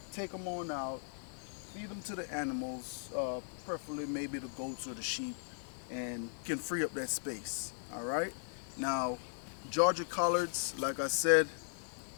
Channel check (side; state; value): right; silent; digital silence